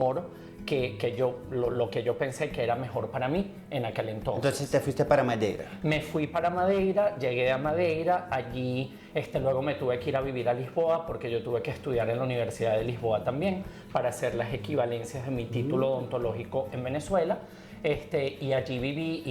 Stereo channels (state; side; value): identical; both; correlation 1.00